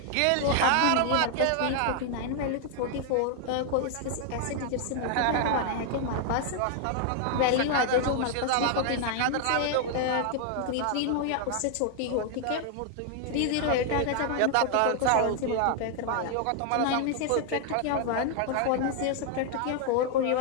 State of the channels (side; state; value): both; different; correlation 0.00